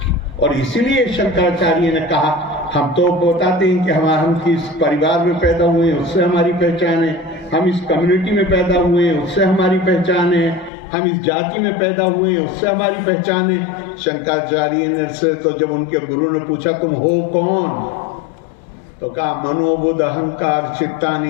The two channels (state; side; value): drops out; right; at 10.7 s